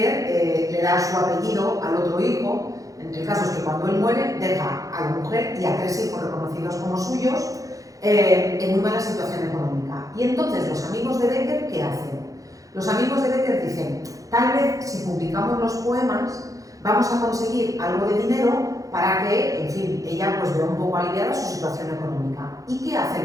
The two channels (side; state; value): left; late; 0.17 ms